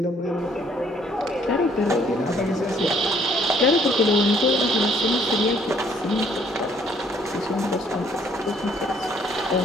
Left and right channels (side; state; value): both; normal; correlation 0.63